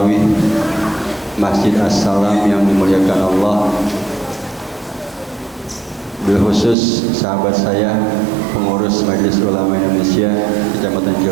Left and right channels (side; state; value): left; drops out; at 6.8 s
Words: Masjid As-Salam yang dimuliakan Allah, berkhusus sahabat saya pengurus Majelis Ulama Indonesia Kecamatan